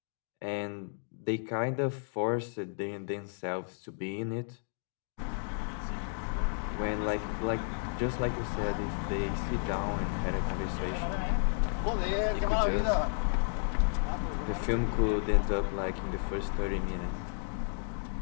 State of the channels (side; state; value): right; silent; 56 dB below the other